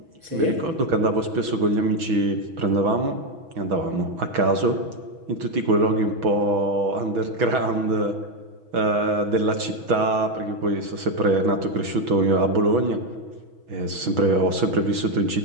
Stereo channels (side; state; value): left; late; 6.2 ms